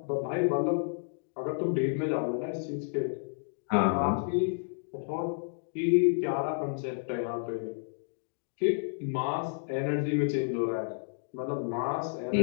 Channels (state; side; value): silent; right; digital silence